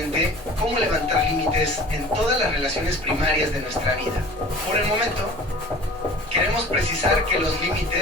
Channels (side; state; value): both; normal; correlation 0.43